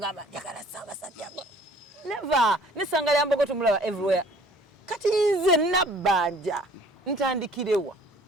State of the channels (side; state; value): both; normal; correlation 0.54